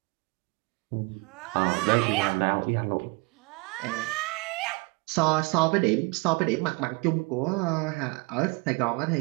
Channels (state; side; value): quieter; left; 27.7 dB